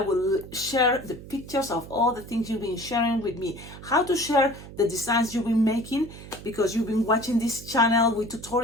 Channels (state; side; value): noise; right; hum, 15 dB below the sound